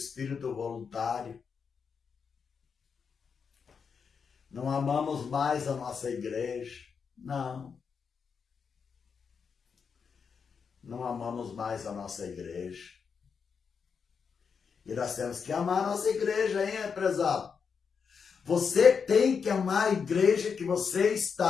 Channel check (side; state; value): right; quieter; 6.1 dB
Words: voluntário. Não amamos mais a nossa igreja. Não. Não amamos mais a nossa igreja. E nós temos que amar a nossa igreja, hein, prezado? Você tem que amar a igreja que você